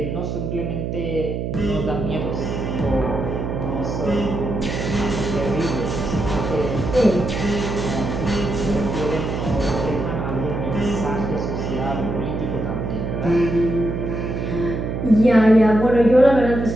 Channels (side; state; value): right; noise; hum, 3 dB below the sound